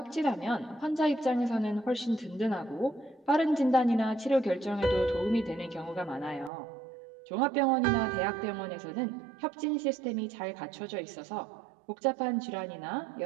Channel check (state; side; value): drops out; left; at 6.5 s